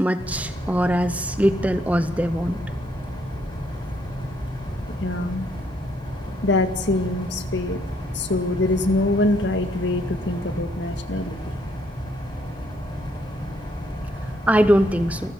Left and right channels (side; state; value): both; normal; correlation 0.72